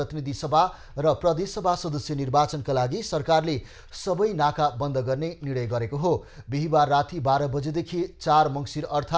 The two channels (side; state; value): both; identical; correlation 1.00